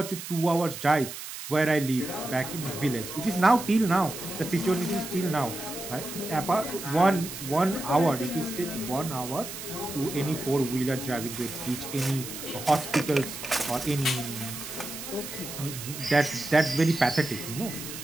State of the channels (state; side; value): noise; right; hiss, 9 dB below the sound